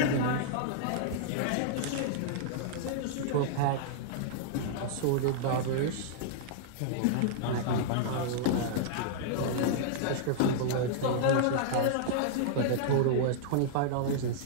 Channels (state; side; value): different; both; correlation -0.01